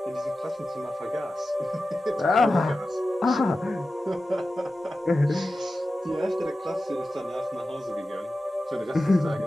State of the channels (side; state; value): both; normal; correlation 0.94